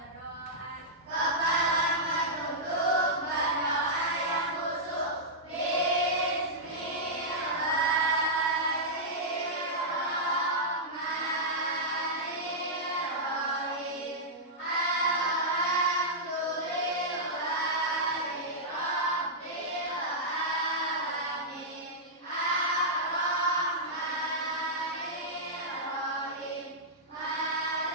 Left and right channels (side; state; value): both; normal; correlation -0.10